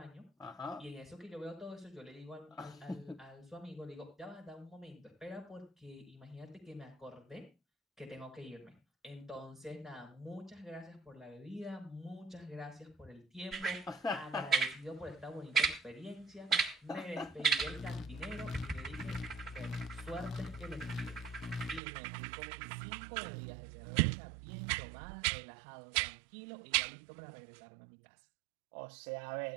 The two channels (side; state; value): left; drops out; at 21.8 s